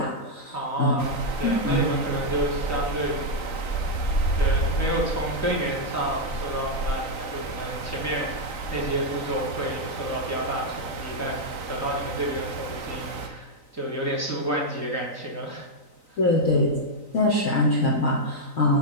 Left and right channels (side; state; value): right; late; 3.9 ms